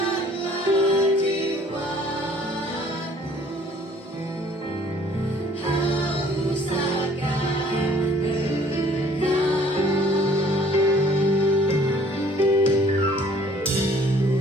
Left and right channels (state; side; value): normal; both; correlation 0.56